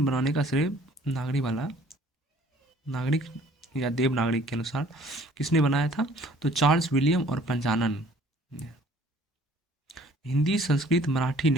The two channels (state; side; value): normal; both; correlation 0.55